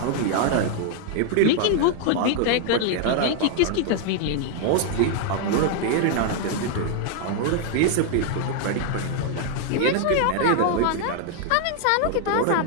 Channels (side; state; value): both; different; correlation 0.00